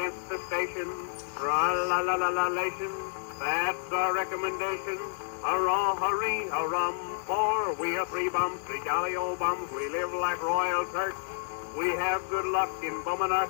the station, tra-la-la-la-la-lation, that's our recommendation. Hurrah, hurry, hurrum, for we are three bums, three jolly old bums. We live like royal Turks. We have good luck in bumming our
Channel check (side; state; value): right; silent; digital silence